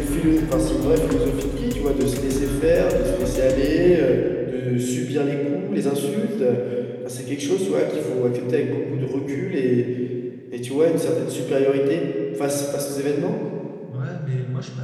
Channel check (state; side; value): identical; both; correlation 1.00